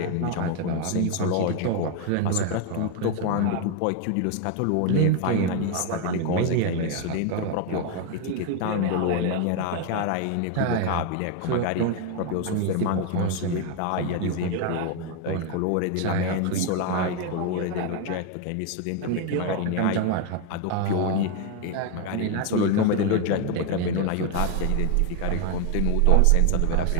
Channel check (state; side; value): different; both; correlation 0.01